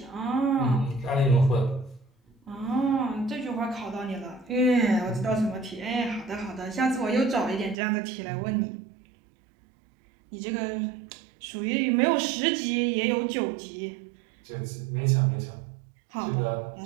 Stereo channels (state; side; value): drops out; left; at 7.8 s